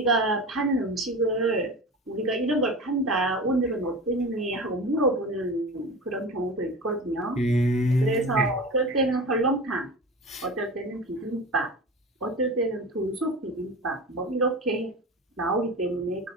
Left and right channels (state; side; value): normal; both; correlation 0.31